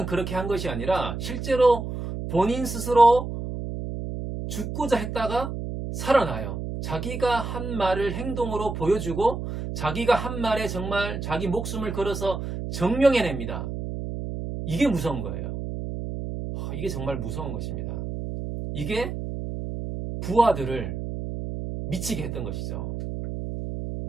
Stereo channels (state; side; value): noise; right; hum, 5 dB below the sound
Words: 그렇게 한 것이 아니라 실제로 본인 스스로 죽고자 했다가 살아나요. 자기가 한 말을 행동으로 보여주고 자기가 한 말에 정말 자기 목숨을 걸어서 증명해냅니다. 이게 무서운 거예요. 이게 정말 무서운 것입니다. 이게 부하들을 미치게 했던 것이죠.